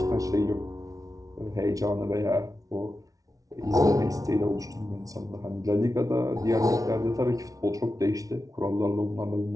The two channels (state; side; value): late; left; 0.17 ms